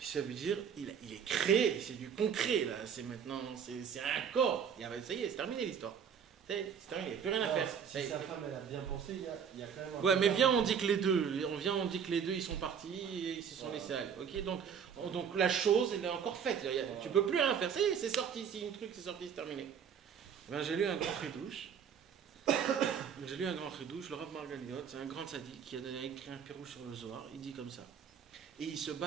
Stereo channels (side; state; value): left; quieter; 7.5 dB